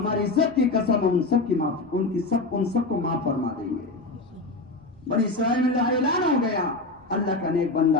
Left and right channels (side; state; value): right; quieter; 3.2 dB